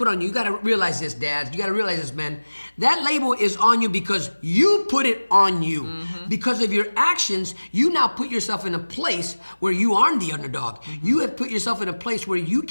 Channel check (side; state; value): both; inverted; correlation -1.00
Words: on you. You got to realize this, dads. You got to realize this, men. That label is on you because you put it on you. Because of your actions, you now put yourself in a place where you aren't the underdog. You have put yourself in a place where you